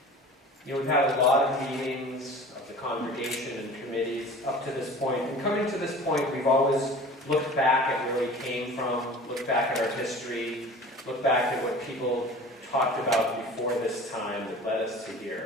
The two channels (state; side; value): normal; both; correlation 0.41